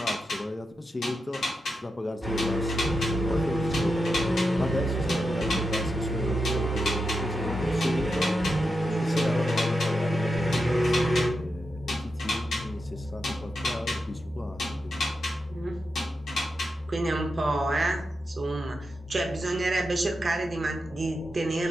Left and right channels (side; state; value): both; normal; correlation 0.88